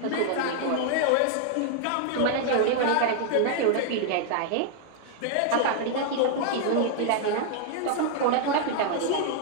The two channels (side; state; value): both; different; correlation 0.00